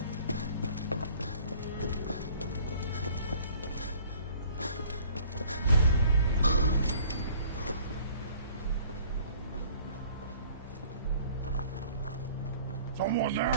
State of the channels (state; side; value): inverted; both; correlation -0.53